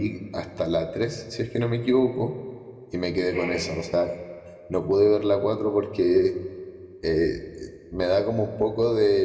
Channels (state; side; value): identical; both; correlation 1.00